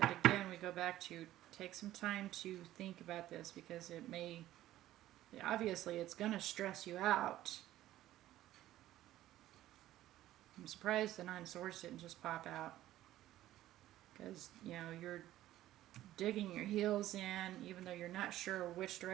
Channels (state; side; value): quieter; left; 14.2 dB